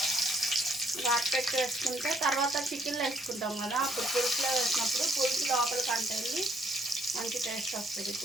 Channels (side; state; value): both; normal; correlation 0.68